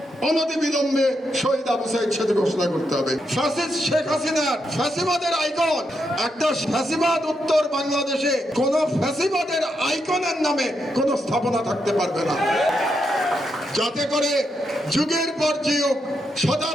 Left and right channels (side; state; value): both; normal; correlation 0.82